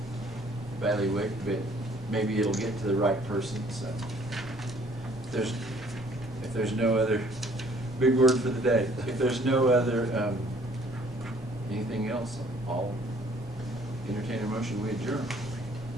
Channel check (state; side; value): normal; both; correlation 0.59